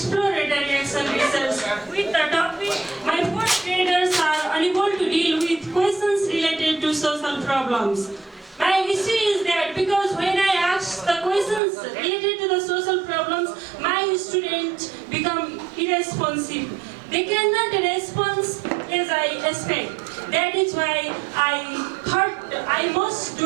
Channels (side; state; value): left; drops out; at 11.6 s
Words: Action Research with the topic my fourth graders are unable to deal with questions related to social problems. My issue is that because when I ask the questions related to the social problems, my students become irresponsive. They cannot respond as I expect. That is why I thought I must